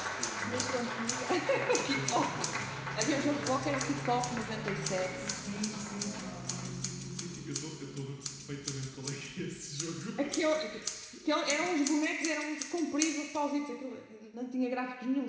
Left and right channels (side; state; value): both; identical; correlation 1.00